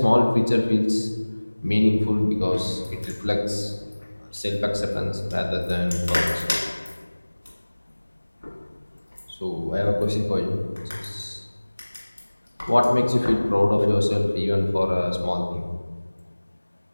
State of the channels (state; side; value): inverted; both; correlation -1.00